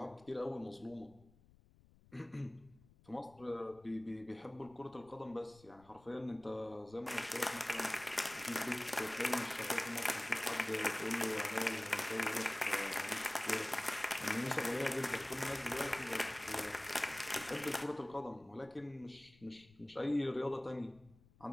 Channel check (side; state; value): left; noise; rumble, 26 dB below the sound